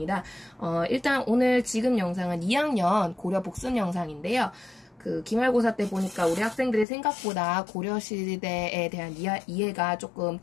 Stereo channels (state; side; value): drops out; right; at 6.9 s